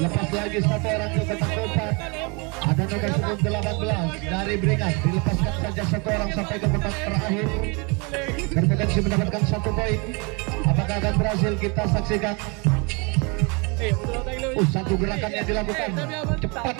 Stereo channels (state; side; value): quieter; left; 31.1 dB